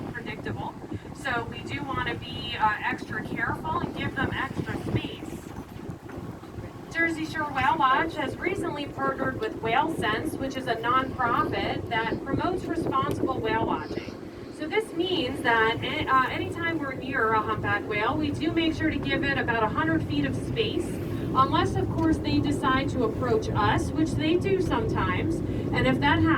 So we do want to be extra careful and give them extra space. Jersey Shore Whale Watch has recently partnered with Whale Sense, which is a nonprofit that promotes responsible whale watching. So this means that anytime we're near a humpback whale, we do make sure to give it about 100 feet of space, unless of course they decide to approach us, which they do sometimes. And if that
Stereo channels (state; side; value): identical; both; correlation 1.00